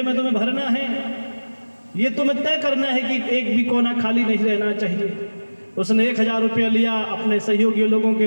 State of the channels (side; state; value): both; inverted; correlation -1.00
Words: में तुम्हें भरना है। ये तुम्हें तय करना है कि एक भी कोना खाली नहीं रहना चाहिए। उसने 1000 रुपया लिया, अपने सहयोगी लोगों के